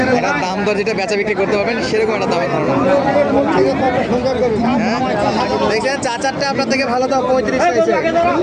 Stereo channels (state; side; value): identical; both; correlation 1.00